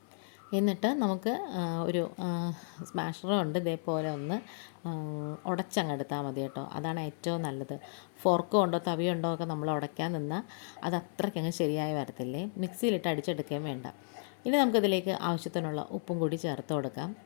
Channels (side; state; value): right; silent; 55 dB below the other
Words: എന്നിട്ട് നമുക്ക് ഒരു സ്മാഷറും ഉണ്ട്, ഇതേപോലെ ഒന്ന് ഉടച്ചങ്ങെടുത്താൽ മതി കേട്ടോ. അതാണ് ഏറ്റവും നല്ലത്. ഫോർക്ക് കൊണ്ടോ തവിയുണ്ടോ ഒക്കെ നമ്മൾ ഉടയ്ക്കാൻ നിന്നാൽ അത് അത്രയ്ക്കങ്ങ് ശരിയായി വരത്തില്ലേ. മിക്സിയിലിട്ട് അടിച്ചെടുക്കുകയും വേണ്ട. ഇനി നമുക്കിതിലേക്ക് ആവശ്യത്തിനുള്ള ഉപ്പും കൂടി ചേർത്ത് കൊടുക്കാം.